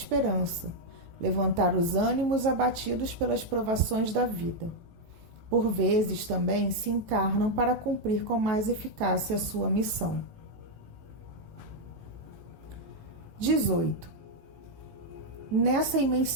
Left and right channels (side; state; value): left; late; 18 ms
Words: levantar os ânimos abatidos pelas provações da vida. Por vezes também se encarnam para cumprir com mais eficácia a sua missão. 18. Nessa